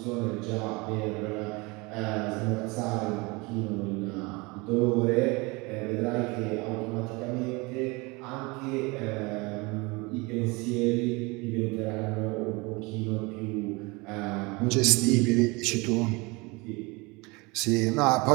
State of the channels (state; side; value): quieter; left; 25.9 dB